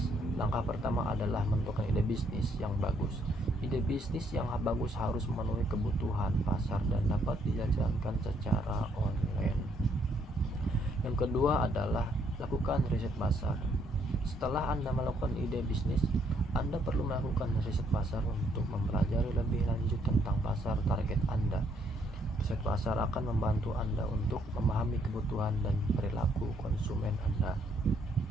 Langkah pertama adalah menentukan ide bisnis yang bagus. Ide bisnis yang bagus harus memenuhi kebutuhan pasar dan dapat dijalankan secara online. Yang kedua adalah lakukan riset pasar. Setelah Anda melakukan ide bisnis, Anda perlu melakukan riset pasar untuk mempelajari lebih lanjut tentang pasar target Anda. Riset pasar akan membantu Anda untuk memahami kebutuhan dan perilaku konsumen Anda.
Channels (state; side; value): normal; both; correlation 0.70